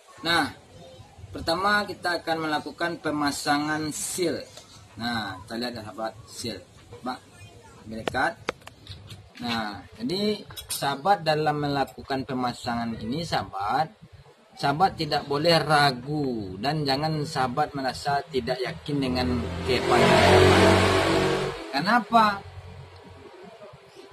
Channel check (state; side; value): identical; both; correlation 1.00